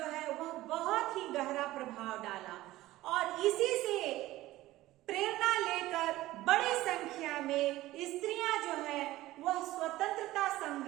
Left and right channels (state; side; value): quieter; left; 16.6 dB